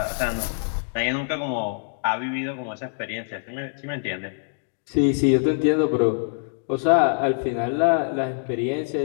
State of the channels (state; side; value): silent; right; digital silence